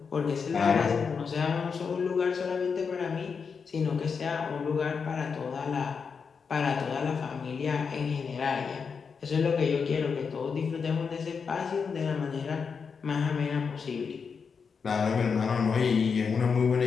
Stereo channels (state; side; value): quieter; right; 5.8 dB